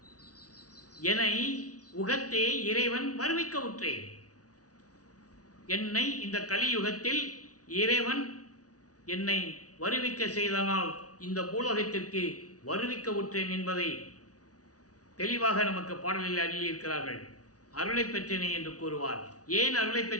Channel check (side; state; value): right; late; 0.68 ms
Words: என்னை உகத்தே இறைவன் வருவிக்க உற்றேன். என்னை இந்த கலியுகத்தில் இறைவன் என்னை வருவிக்க செய்தனால் இந்த பூலோகத்திற்கு வருவிக்க உற்றேன் என்பதை தெளிவாக நமக்கு பாடலில் அருளியிருக்கிறார்கள். அருளை பெற்றேனே என்று கூறுவார். ஏன் அருளை